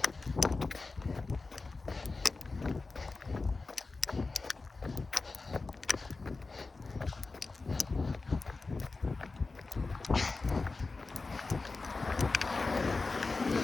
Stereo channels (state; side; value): quieter; right; 3.8 dB